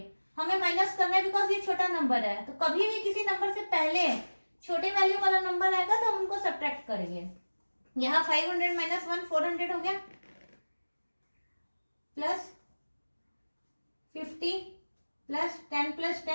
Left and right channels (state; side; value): inverted; both; correlation -1.00